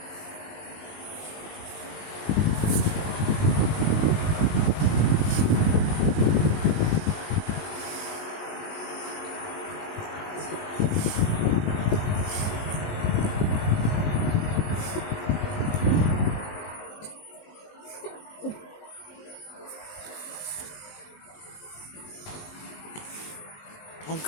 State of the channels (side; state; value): right; late; 19 ms